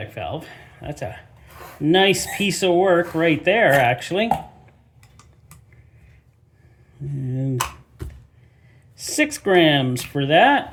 valve. That's a nice piece of work right there, actually. And 6 grams for that.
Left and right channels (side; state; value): both; identical; correlation 1.00